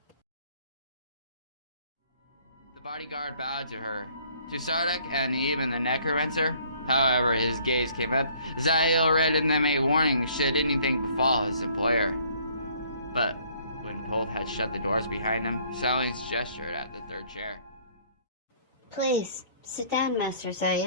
The bodyguard bowed to her. To Sardak and even the necromancer, however, his gaze came up. Zayl read in them a warning should anything befall his employer. But when Pulth had shut the doors behind him, Selene's gestured at the third chair. Please, sit down, Master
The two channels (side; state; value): both; inverted; correlation -0.60